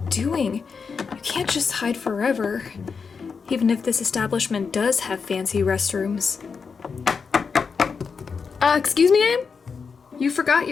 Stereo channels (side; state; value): right; quieter; 5.5 dB